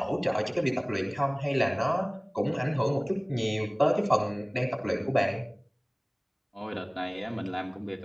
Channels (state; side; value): identical; both; correlation 1.00